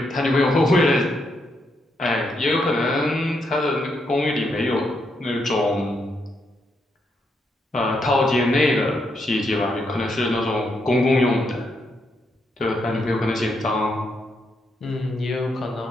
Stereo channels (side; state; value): both; normal; correlation 0.79